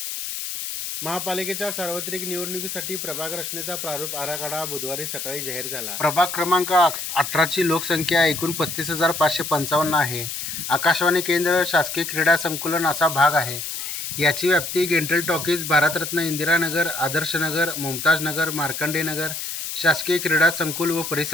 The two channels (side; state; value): left; noise; hiss, 5 dB below the sound